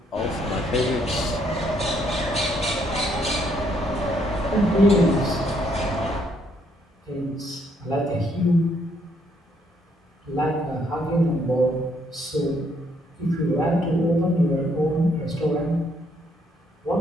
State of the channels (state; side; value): normal; both; correlation 0.70